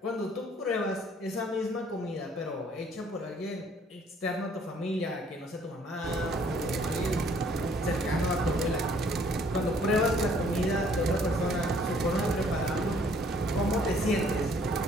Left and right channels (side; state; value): both; normal; correlation 0.61